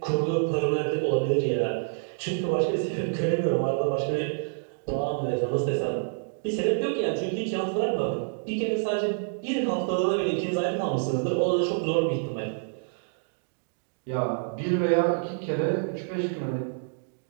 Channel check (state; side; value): silent; left; digital silence